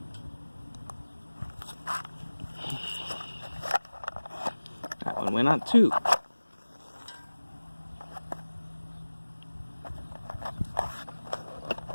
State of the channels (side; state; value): both; inverted; correlation -1.00